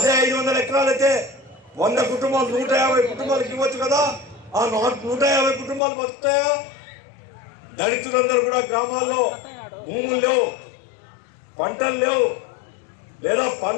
500 ఎకరాలు అయితే 100 కుటుంబాలు 150 కుటుంబాలకు ఇవ్వచ్చు కదా. ఆ 150 కుటుంబాలు బతుకుతాయా? దళితులందరూ కూడా గ్రామాల్లో భూములు లేవు, పంటలు లేవు, లేదా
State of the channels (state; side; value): drops out; right; at 5.8 s